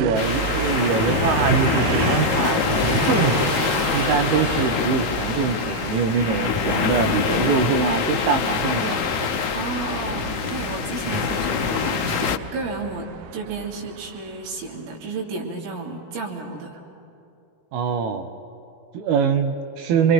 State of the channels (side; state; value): left; late; 18 ms